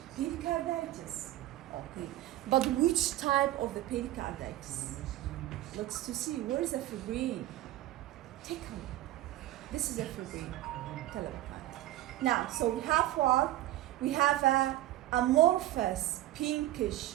Pericarditis. Okay. But which type of the pericarditis? Let's to see, where is the fibrin? Take a look. This is a fibrin. Now, so we have what? We have a amorphous,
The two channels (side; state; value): left; quieter; 15.1 dB